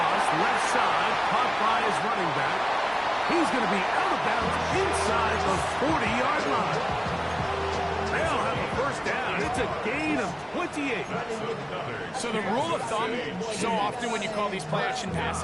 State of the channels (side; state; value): both; identical; correlation 1.00